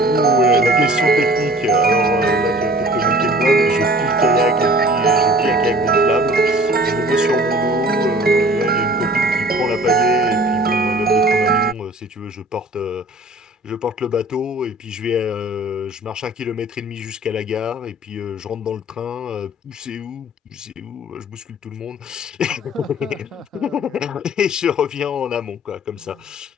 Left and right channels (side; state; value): both; normal; correlation 0.48